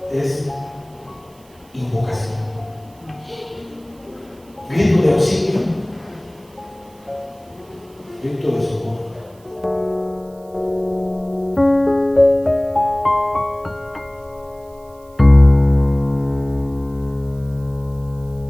es invocación. Grito de auxilio, grito de socorro.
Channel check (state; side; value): noise; right; hiss, 30 dB below the sound